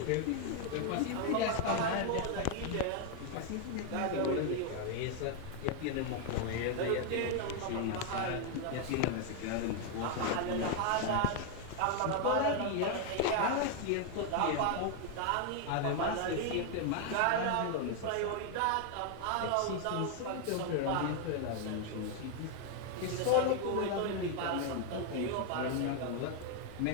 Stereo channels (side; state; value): both; different; correlation 0.00